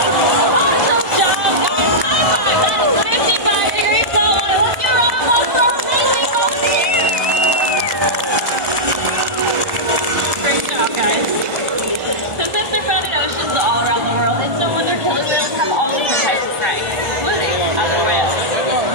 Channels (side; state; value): left; late; 1.4 ms